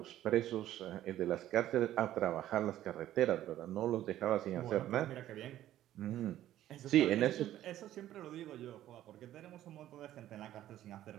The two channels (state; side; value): quieter; left; 13.0 dB